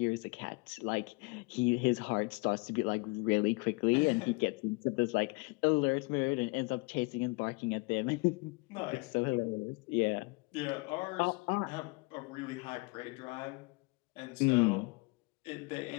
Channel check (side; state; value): right; quieter; 27.8 dB